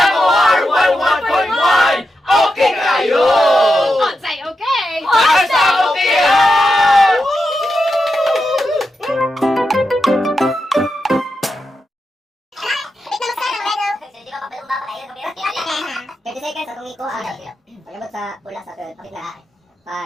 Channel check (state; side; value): normal; both; correlation 0.88